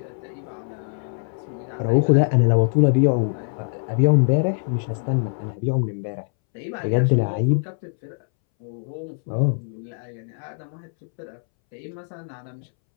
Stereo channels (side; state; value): right; silent; 63 dB below the other